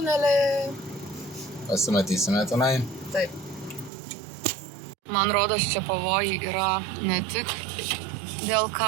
Pasimatysime tenai. Taip. Man rodos, čia pavojai yra ne tik dėl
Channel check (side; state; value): left; drops out; at 3.9 s